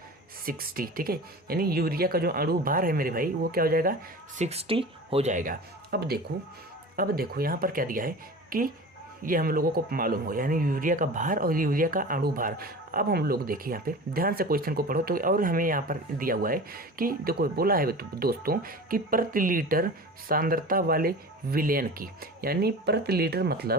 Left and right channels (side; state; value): both; normal; correlation 0.35